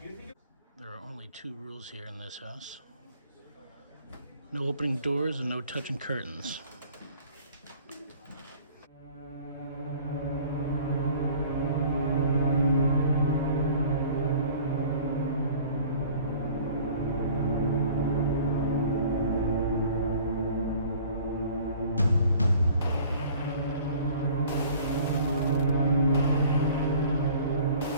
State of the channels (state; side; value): inverted; both; correlation -0.50